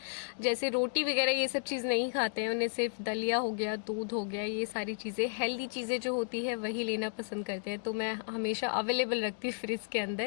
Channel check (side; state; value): right; silent; digital silence